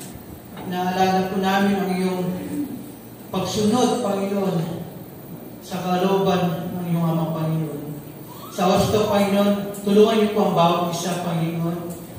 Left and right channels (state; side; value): identical; both; correlation 1.00